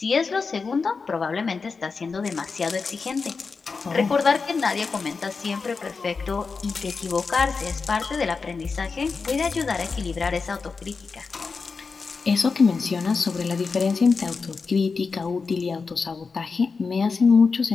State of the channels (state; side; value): quieter; right; 4.7 dB